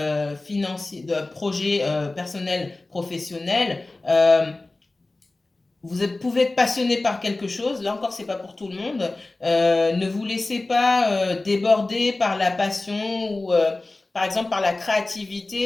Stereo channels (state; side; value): quieter; right; 3.1 dB